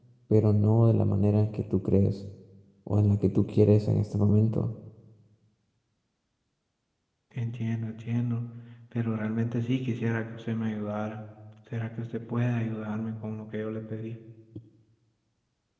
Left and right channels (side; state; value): both; identical; correlation 1.00